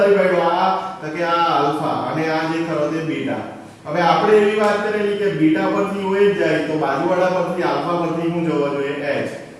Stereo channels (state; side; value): identical; both; correlation 1.00